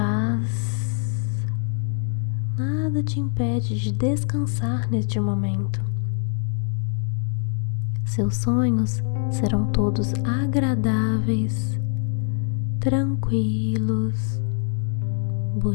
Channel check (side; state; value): right; silent; 56 dB below the other